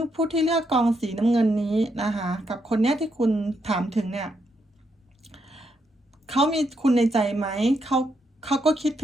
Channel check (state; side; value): normal; both; correlation 0.79